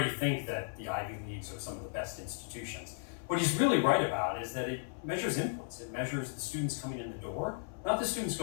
think that the Ivy Leagues are some of the best institutions. What he's really right about is that it measures inputs. It measures the students coming in the door, not the students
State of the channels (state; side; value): silent; right; 54 dB below the other